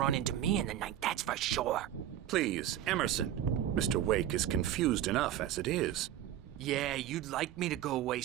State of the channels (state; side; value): quieter; left; 11.5 dB